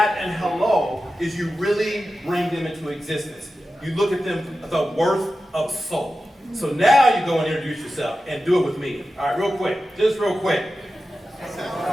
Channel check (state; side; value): normal; both; correlation 0.93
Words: and hello is you really bring them into existence. You look at them, the worth of soul. So now you go and introduce yourself and do it with me. All right, real quick, just real quick.